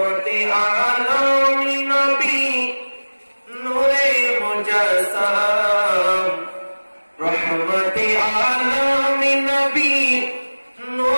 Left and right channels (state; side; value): inverted; both; correlation -1.00